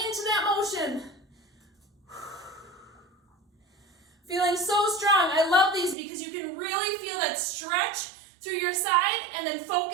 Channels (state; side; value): drops out; left; at 6.0 s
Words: that motion. Feeling so strong. I love these because you can really feel that stretch through your side and then